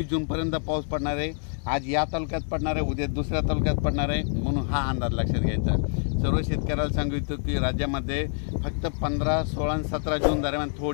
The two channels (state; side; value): silent; right; 61 dB below the other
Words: जूनपर्यंत पाऊस पडणार आहे। आज या तालुक्यात पडणार आहे, उद्या दुसऱ्या तालुक्यात पडणार आहे, म्हणून हा अंदाज लक्षात घ्यायचा। सर्व शेतकऱ्याला सांगू इच्छितो की राज्यामध्ये फक्त 15, 16 आणि 17 जून दरम्यान